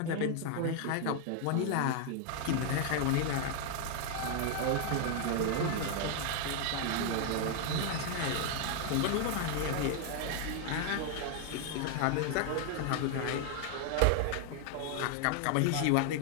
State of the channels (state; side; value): different; both; correlation 0.00